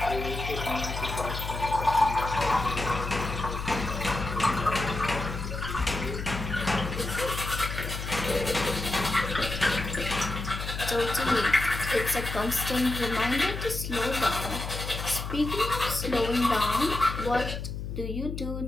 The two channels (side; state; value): left; noise; hum, 6 dB below the sound